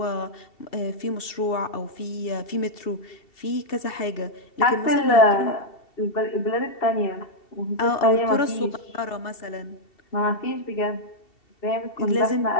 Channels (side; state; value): right; late; 2.7 ms